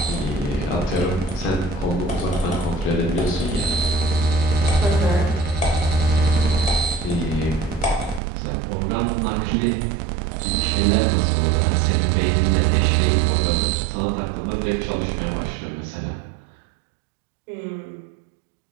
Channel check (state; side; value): drops out; left; at 8.2 s